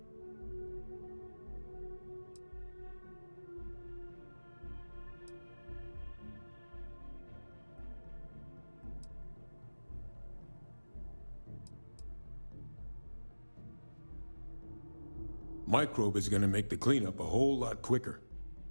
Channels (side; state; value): both; inverted; correlation -1.00